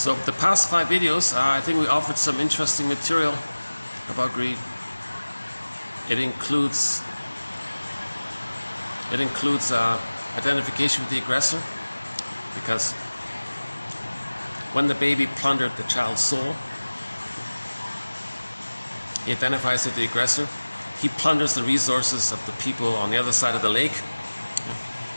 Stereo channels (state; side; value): inverted; both; correlation -1.00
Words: the past 5 videos, I think we offered some interesting material about greed. It includes identification with the aggressor, because when the baby plundered the child's soul, he identifies with the aggressor. He plunders the resources of the people on the other side of the lake.